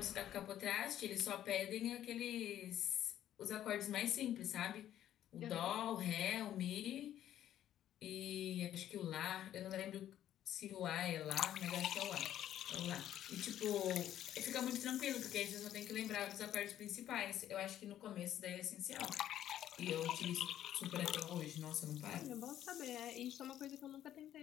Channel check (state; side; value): quieter; right; 11.6 dB